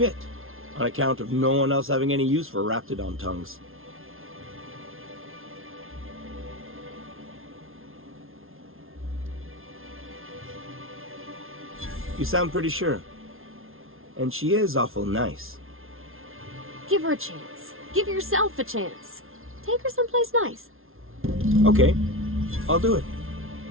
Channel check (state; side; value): late; left; 0.61 ms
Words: on account of no one else having any use for Raptidon tongues. You sound pretty sure. And she is awful nice. Give her a chance. Give yourself a chance. Take her someplace nice. Okay, I'll do it.